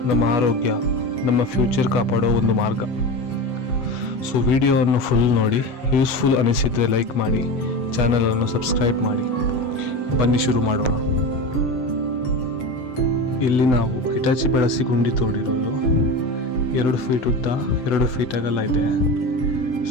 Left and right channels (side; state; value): right; late; 7.7 ms